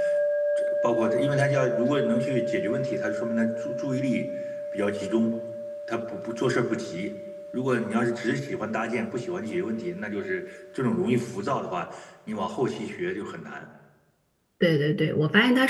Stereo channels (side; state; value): both; identical; correlation 1.00